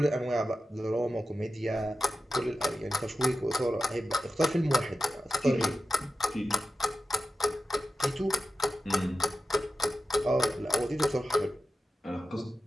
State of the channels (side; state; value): both; normal; correlation 0.92